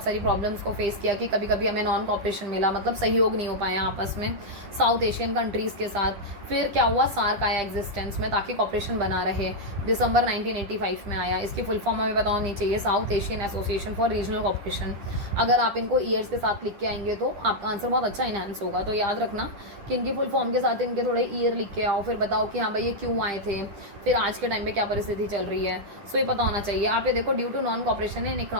सारी प्रॉब्लम्स को फेस किया कि कभी कभी हमें नॉन कॉपरेशन मिला, मतलब सहयोग नहीं हो पाया आपस में साउथ एशियन कंट्रीज़ के साथ। फिर क्या हुआ, सार्क आया एग्जिस्टेंस में ताकि कॉपरेशन बना रहे, दिसंबर 1985 में आया। इसकी फुल फॉर्म हमें पता होनी चाहिए, South Asian Association for Regional Cooperation. अगर आप इनको ईयर्स के साथ लिख के आएंगे तो आपका आंसर बहुत अच्छा इनहेंस होगा। तो याद रखना कि इनकी फुल फॉर्म के साथ इनके थोड़े ईयर लिख के आओ, फिर बताओ कि हाँ भाई ये क्यों आए थे, फिर आज के टाइम पे क्या परिस्थिति चल रही है, सो ये पता होना चाहिए। आप ये देखो, due to non cooperation in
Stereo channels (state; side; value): late; left; 10 ms